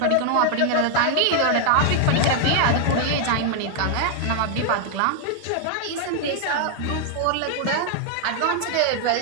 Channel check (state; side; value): different; both; correlation 0.00